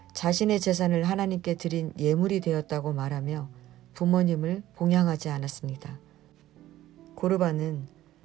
자신의 재산을 하나님께 드린 예물이 되었다고 말하며 부모님을 봉양하지 않았습니다. 고르반은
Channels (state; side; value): quieter; left; 14.3 dB